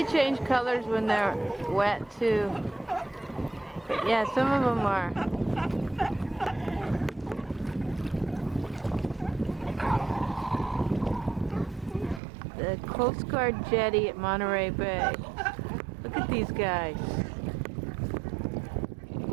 change colors when they're wet too. But yeah, some of them are. The Coast Guard jetty at Monterey Bay. Look at these guys. Isn't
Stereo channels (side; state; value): left; drops out; at 12.2 s